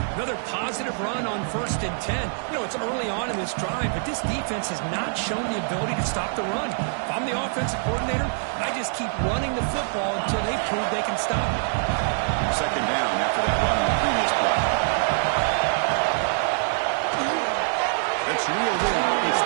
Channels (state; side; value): silent; left; digital silence